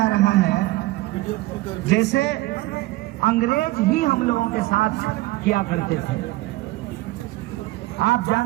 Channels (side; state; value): left; quieter; 19.2 dB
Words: रहा है जैसे अंग्रेज ही हम लोगों के साथ किया करते थे। आप